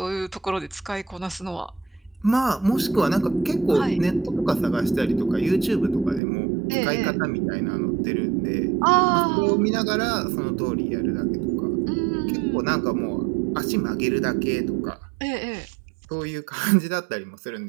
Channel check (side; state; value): left; drops out; at 6.2 s